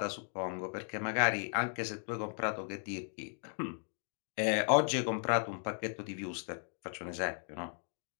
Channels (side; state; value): right; silent; 54 dB below the other